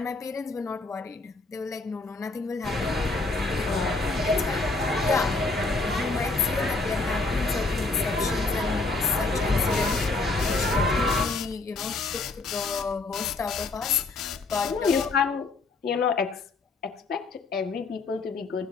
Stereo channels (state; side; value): quieter; right; 3.5 dB